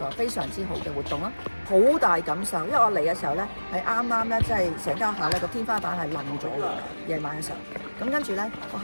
非常之好嘅活動啦，好大感受。因為我嚟嘅時候咧，係啱啱咧，即係成間學校咧個天花板係冧咗嘅，夜晚嘅時候。咁跟住咧，學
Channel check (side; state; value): both; inverted; correlation -1.00